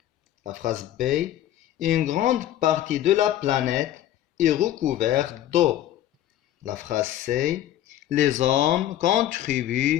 La phrase B, une grande partie de la planète est recouverte d'eau. La phrase C, les hommes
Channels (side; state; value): right; quieter; 12.5 dB